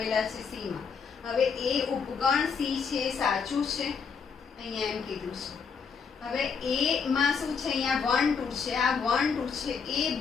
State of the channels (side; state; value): right; quieter; 5.9 dB